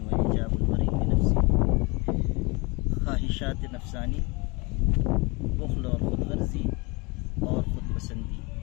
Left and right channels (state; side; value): quieter; right; 27.3 dB